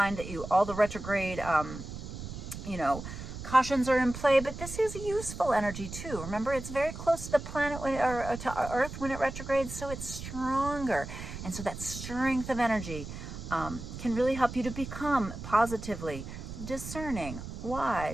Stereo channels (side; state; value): right; noise; rumble, 9 dB below the sound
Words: that all the retrograde cautions are in play, but this is useful energy too. Remember, it's very close to the planet or to Earth when it retrogrades, so it's stronger. And so that strength of energy can really help you to become positively discerning,